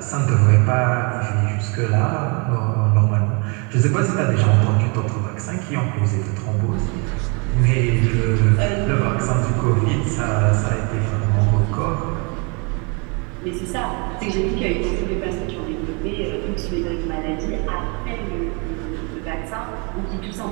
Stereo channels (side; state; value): left; quieter; 32.8 dB